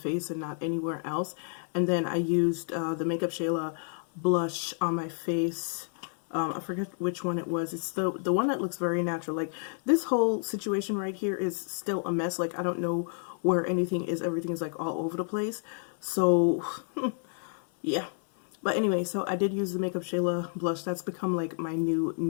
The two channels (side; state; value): right; silent; 58 dB below the other